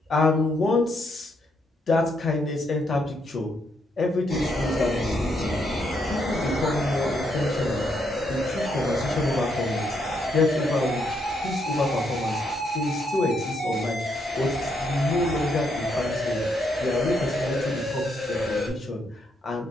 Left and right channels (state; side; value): normal; both; correlation 0.76